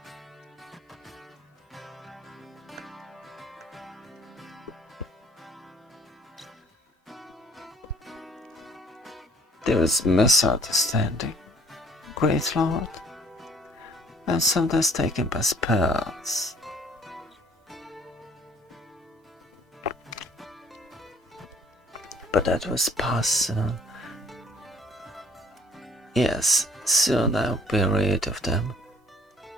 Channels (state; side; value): normal; both; correlation 0.57